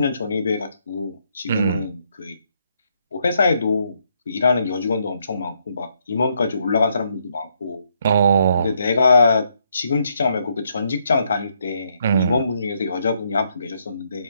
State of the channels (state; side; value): inverted; both; correlation -0.74